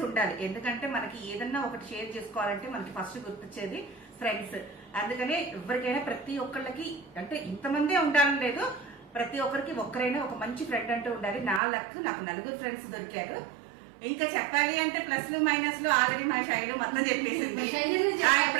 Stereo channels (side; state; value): left; drops out; at 11.6 s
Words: ఉండాలి. ఎందుకంటే మనకి ఏదన్నా ఒకటి షేర్ చేసుకోవాలంటే మనకి ఫస్ట్ గుర్తొచ్చేది ఫ్రెండ్స్. అందుకనే ఎవరికైనా ప్రతి ఒక్కళ్ళకి అంటే ఇంతమందే ఉండాలని లేదు, ప్రతి ఒక్కరికి ఒక్కరైనా ఒక మంచి ఫ్రెండ్ అంటూ ఉండాలి. నా లక్ నాకు 4 ఫ్రెండ్స్ దొరికారు. ఇంకా చెప్పాలి అంటే ప్లస్లు మైనస్లు ఆల్రెడీ మా శైలు మొత్తం చెప్పేసింది.